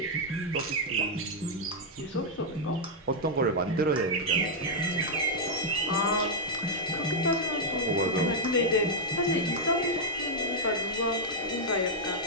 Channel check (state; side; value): normal; both; correlation -0.04